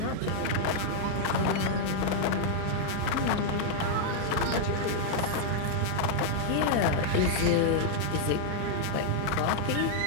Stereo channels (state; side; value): different; both; correlation -0.01